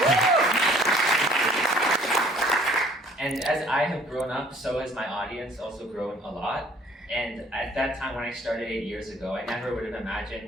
And as I have grown up, so has my audience also grown a lot. And at that time when I started 8 years ago, I never would have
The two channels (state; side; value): normal; both; correlation 0.56